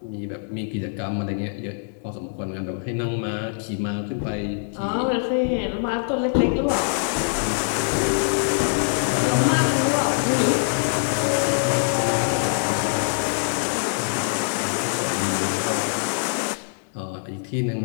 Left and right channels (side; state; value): right; silent; digital silence